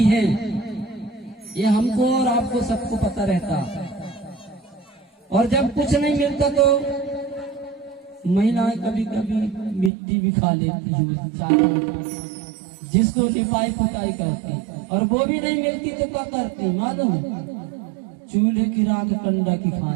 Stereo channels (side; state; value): left; drops out; at 9.9 s